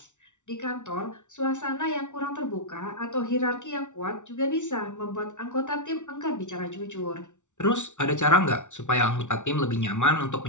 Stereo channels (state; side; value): late; right; 0.85 ms